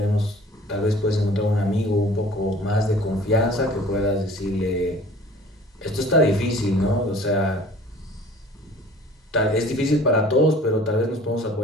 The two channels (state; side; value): normal; both; correlation 0.48